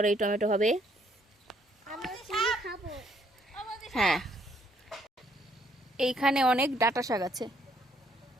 এই টমেটো হবে। হ্যাঁ, এইখানে অনেক ডাঁটা শাক আছে,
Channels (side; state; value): both; normal; correlation 0.68